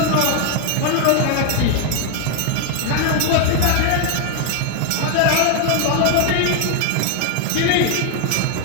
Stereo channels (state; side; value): different; both; correlation 0.00